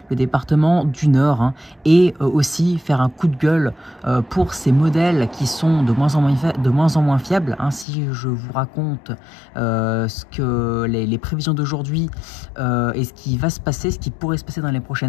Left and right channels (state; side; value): drops out; right; at 7.9 s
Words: le département du Nord, et aussi faire un coup de gueule pour ces modèles qui sont de moins en moins fiables. Si je vous raconte ce que les prévisions d'aujourd'hui et ce qui va se passer, ce qui pourrait se passer dans les